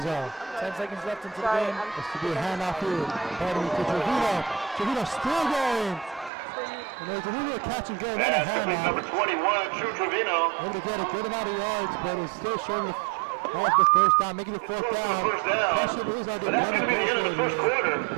10 seconds left into the game. This to be a handoff here. Pardon me to Trevino. Trevino still going. And there's a little bit of catch and go, not a Pass handoff. number 21, Drew Trevino. Able to get a good amount of yards, but it's still short of the first down, making it fourth down. Question is, are they going to go for it here?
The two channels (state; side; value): drops out; left; at 6.3 s